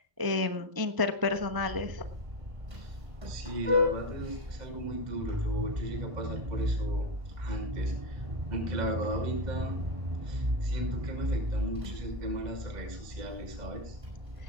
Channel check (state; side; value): late; left; 1.5 ms